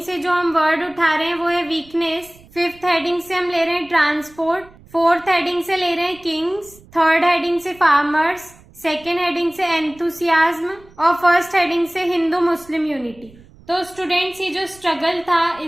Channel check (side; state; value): right; noise; rumble, 25 dB below the sound